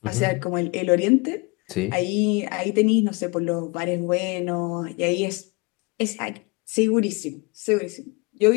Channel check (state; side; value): quieter; right; 28.0 dB